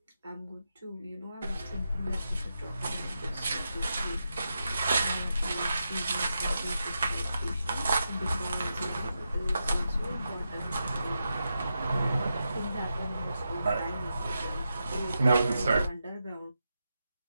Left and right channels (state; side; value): inverted; both; correlation -0.87